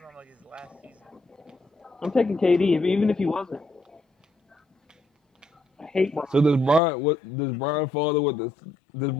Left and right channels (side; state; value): right; drops out; at 6.8 s